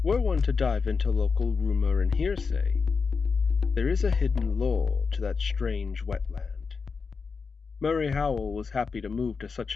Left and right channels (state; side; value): quieter; right; 5.1 dB